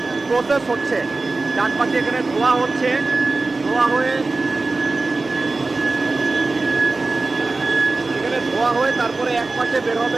প্রসেস হচ্ছে। ডান পাশে এখানে ধোয়া হচ্ছে, ধোয়া হয়ে তারপরে এক পাশে বের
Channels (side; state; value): left; quieter; 3.5 dB